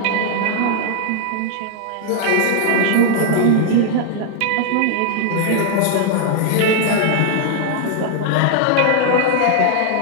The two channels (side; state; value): both; different; correlation 0.00